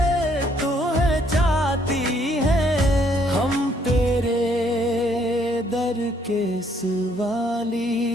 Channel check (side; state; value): both; normal; correlation 0.67